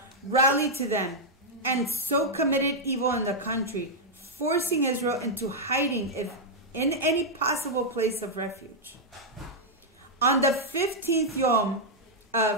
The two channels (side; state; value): both; normal; correlation -0.04